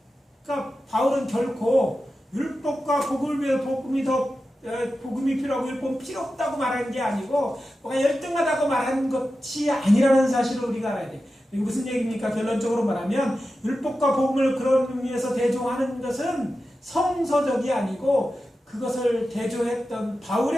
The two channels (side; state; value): both; normal; correlation 0.92